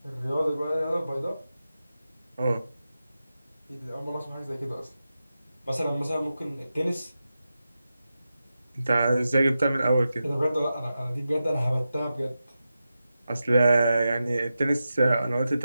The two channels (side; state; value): both; inverted; correlation -0.91